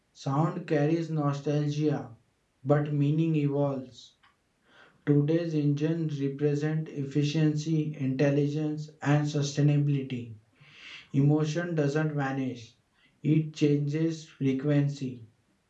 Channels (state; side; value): identical; both; correlation 1.00